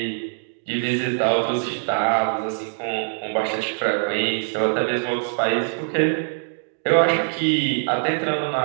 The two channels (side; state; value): left; silent; digital silence